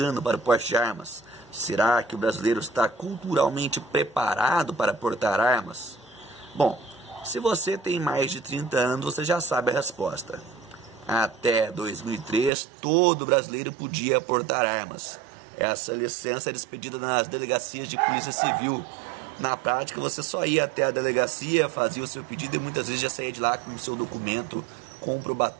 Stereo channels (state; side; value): drops out; left; at 12.5 s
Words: para o porte de armas? Será que o brasileiro está culturalmente preparado para portar armas? Bom, se você tem mais de 30 anos, você já sabe a resposta. Até 2003, todo brasileiro podia portar armas. Essa licença era expedida nas delegacias de polícia civil. Na prática, você só ia até a delegacia, fazia o seu pedido e muitas vezes já saía de lá com o seu documento